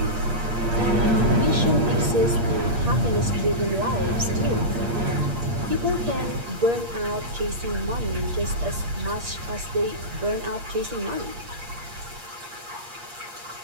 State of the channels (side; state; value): left; late; 8.5 ms